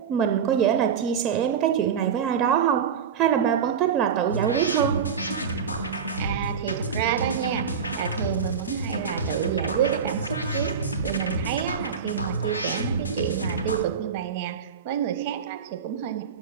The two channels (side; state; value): left; quieter; 6.9 dB